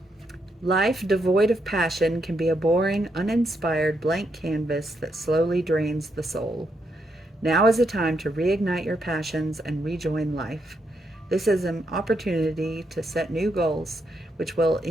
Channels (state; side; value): normal; both; correlation 0.79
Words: Life devoid of passion can be a boring, uninspired blank canvas that slowly drains the soul. Now is a time to reignite your passions and rejoin life. This is an opportunity to set new goals, which will